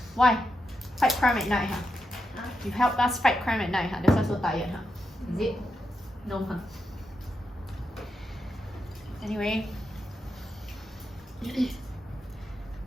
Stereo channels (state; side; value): normal; both; correlation 0.85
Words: Why? Fight crime at night, huh? Huh? You help us fight crime at night, huh? That's why so tired, huh? Is it? No, huh? Anyway.